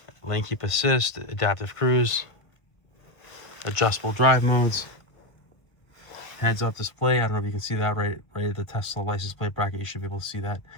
lane keep assist, adaptive cruise, adjustable drive modes, heads up display. I don't know if you can see that right at the Tesla license plate bracket. You should be able to see that.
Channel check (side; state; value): right; late; 1.4 ms